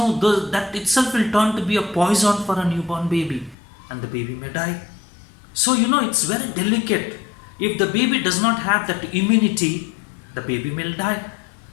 itself will turn to be a poison for a newborn baby, and the baby may die. So it's very delicate. If the baby does not have that immunity, the baby may die.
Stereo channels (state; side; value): drops out; right; at 3.6 s